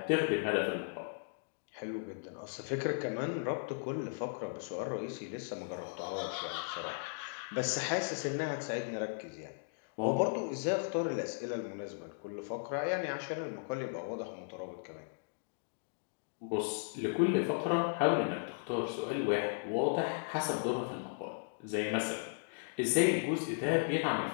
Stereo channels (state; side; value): silent; right; digital silence